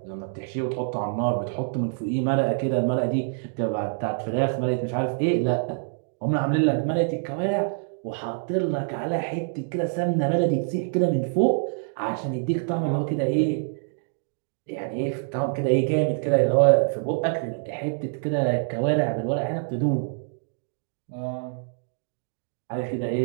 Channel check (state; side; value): silent; left; digital silence